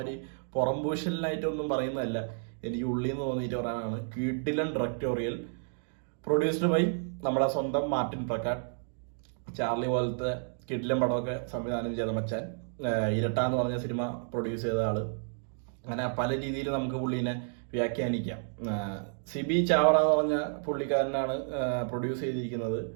പുറംപൂശലിനായിട്ടൊന്നും പറയുന്നതല്ല, എനിക്ക് ഉള്ളിൽ നിന്ന് തോന്നിയിട്ട് പറയാനാണ്. കിടിലൻ ഡയറക്ടോറിയൽ, പ്രൊഡ്യൂസ്ഡ് ബൈ നമ്മുടെ സ്വന്തം മാർട്ടിൻ പ്രക്കാട്ട്. ചാർലി പോലത്തെ കിടിലൻ പടമൊക്കെ സംവിധാനം ചെയ്ത മച്ചാൻ. ഇരട്ട എന്ന് പറഞ്ഞ സിനിമ പ്രൊഡ്യൂസ് ചെയ്ത ആള്. അങ്ങനെ പല രീതിയിൽ നമുക്ക് പുള്ളീനെ വ്യാഖ്യാനിക്കാം. സിബി ചാവറ എന്ന് പറഞ്ഞ പുള്ളിക്കാരനാണ് പ്രൊഡ്യൂസ് ചെയ്തിരിക്കുന്നത്.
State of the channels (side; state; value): left; silent; digital silence